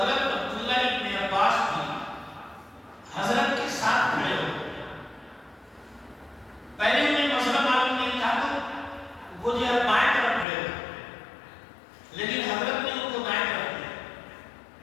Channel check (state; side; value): drops out; right; at 10.5 s